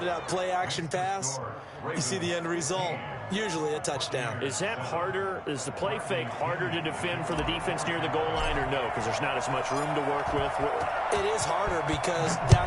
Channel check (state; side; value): identical; both; correlation 1.00